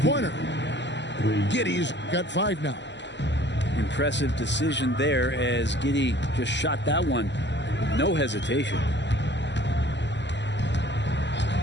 Giddey's got 5 now. Impressive decision there as Giddey just shot that one. No hesitation.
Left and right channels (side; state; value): right; late; 0.52 ms